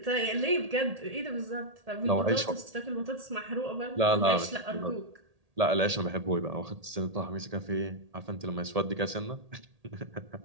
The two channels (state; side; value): late; left; 1.8 ms